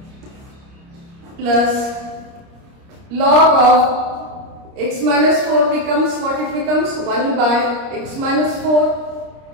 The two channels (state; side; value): late; left; 30 ms